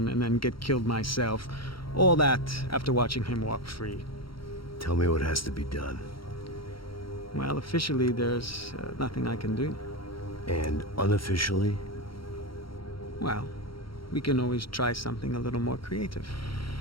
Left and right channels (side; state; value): right; late; 0.74 ms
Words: and then get killed myself. All that after watching him walk free. Tell me what has to be done. Well, officially there's nothing I can do. And unofficially? Well, we can always try something a little more creative.